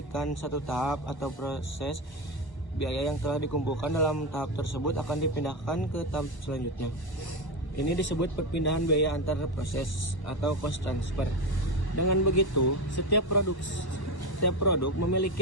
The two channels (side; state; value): right; late; 1.1 ms